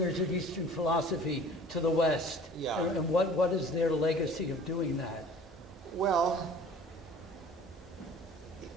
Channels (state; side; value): normal; both; correlation 0.47